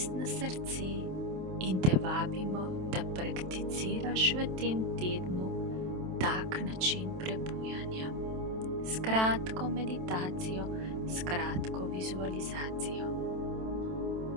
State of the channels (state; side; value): late; left; 27 ms